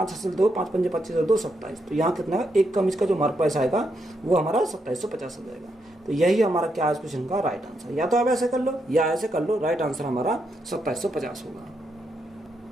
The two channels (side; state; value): both; normal; correlation 0.80